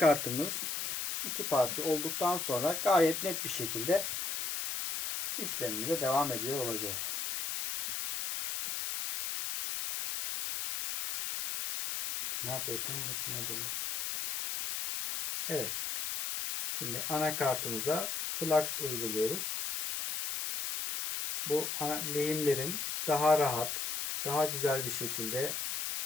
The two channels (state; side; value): noise; left; hiss, 2 dB below the sound